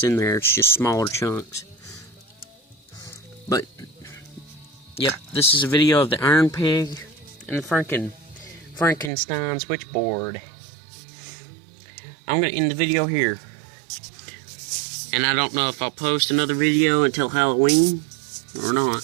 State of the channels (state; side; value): drops out; left; at 9.1 s